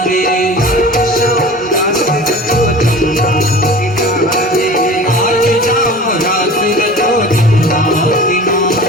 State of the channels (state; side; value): normal; both; correlation 0.39